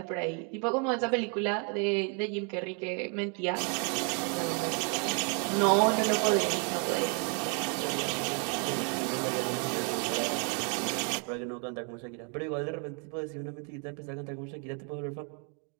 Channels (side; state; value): left; quieter; 38.2 dB